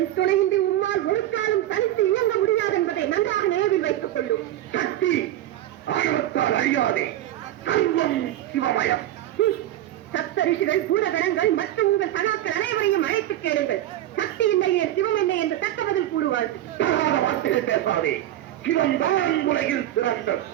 துணையின்றி உம்மால் ஒரு காலம் தனித்து இயங்க முடியாது என்பதை நன்றாக நினைவில் வைத்துக் கொள்ளும். சக்தி ஆணவத்தால் அழியாதே. சர்வம் சிவமயம். சப்த ரிஷிகள், பூதகணங்கள் மற்றும் உங்கள் சகாக்கள் அனைவரையும் அழைத்து கேளுங்கள். சக்தி இல்லையே சிவம் இல்லை என்று தக்க பதில் கூறுவார்கள். வார்த்தைகள் பேசாதே. சிவம் தான் உலகில் சிறந்தது.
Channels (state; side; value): quieter; left; 13.3 dB